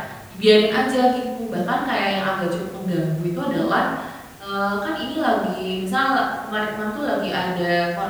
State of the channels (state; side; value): identical; both; correlation 1.00